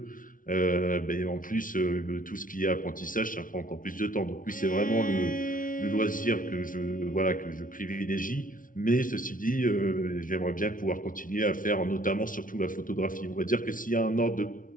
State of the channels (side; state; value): right; late; 0.39 ms